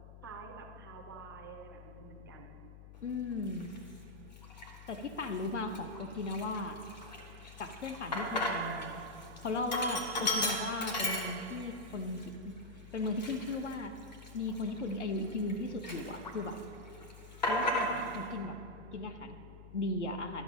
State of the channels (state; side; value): noise; left; hum, 15 dB below the sound